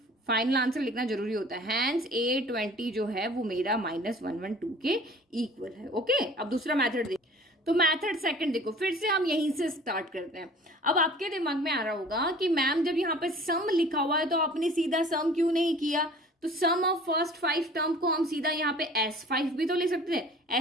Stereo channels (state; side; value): normal; both; correlation 0.48